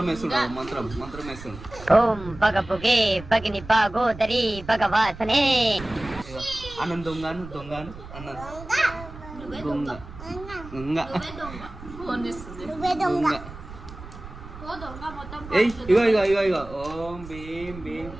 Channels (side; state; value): right; noise; rumble, 14 dB below the sound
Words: వేస్తున్నాడు మంత్రం వేస్తున్నాడు ఓం పగ పొగే పగిని పాగోదరి భగవాసనే అన్నం దొంగను దొంగను అన్నం దొంగ దొంగ ఫోన్ చేస్తుంది దొంగ ఏయ్ ఇగో ఇగో ఇగో ఇగో ఓం భీం భీం